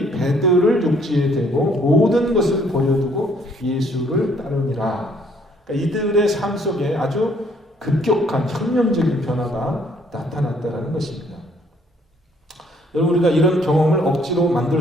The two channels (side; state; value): both; normal; correlation 0.64